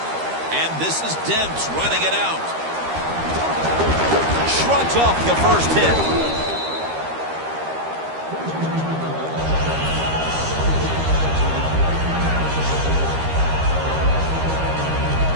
And this is Dents running it out. Shrugs off the first hit.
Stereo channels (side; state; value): left; late; 13 ms